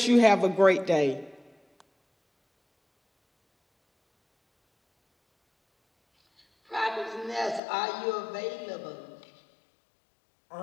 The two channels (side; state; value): right; drops out; at 7.6 s